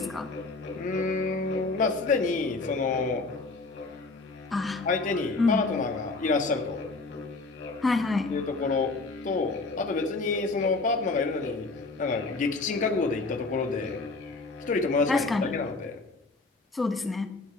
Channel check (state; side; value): quieter; right; 3.5 dB